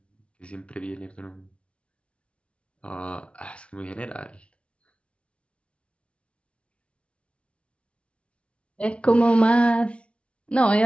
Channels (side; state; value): right; late; 0.060 ms